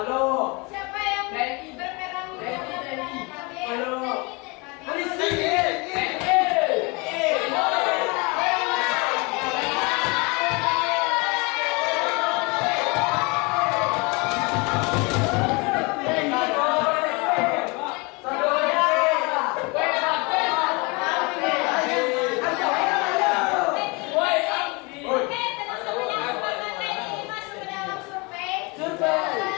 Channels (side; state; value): right; quieter; 28.4 dB